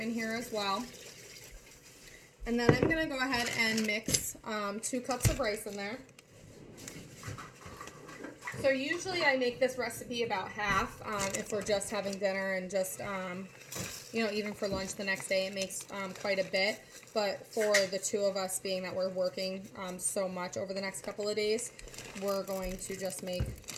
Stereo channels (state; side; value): identical; both; correlation 1.00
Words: here as well. And then I'm going to go ahead and mix 2 cups of rice in there. So usually I make this recipe about half if we're just having dinner and just, you know, even for lunch the next day, it makes quite a bit. But for the 2 of us, being that we're working so much over the next couple of days, we're going to just make